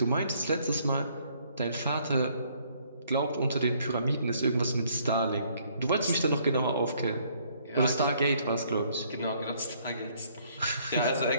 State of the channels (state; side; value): inverted; both; correlation -0.65